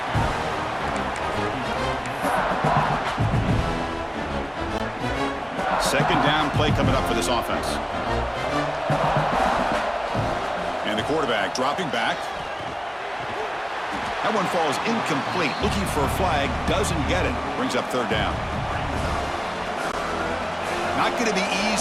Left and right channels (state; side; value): identical; both; correlation 1.00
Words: Second down play coming up for this offense. And the quarterback dropping back. That one falls incomplete. Looking for a flag. Doesn't get it. Brings up 3rd down. Not going to be